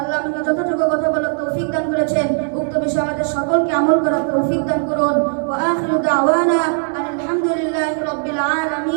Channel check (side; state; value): left; silent; digital silence